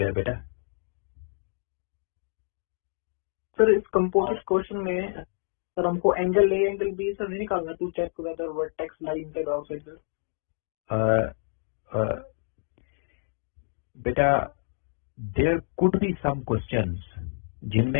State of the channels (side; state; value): right; silent; digital silence